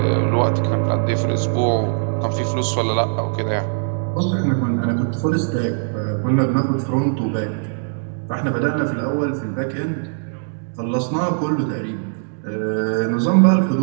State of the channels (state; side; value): silent; left; digital silence